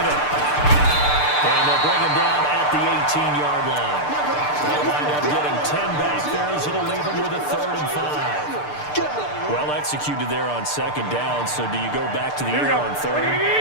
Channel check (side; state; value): right; late; 6.7 ms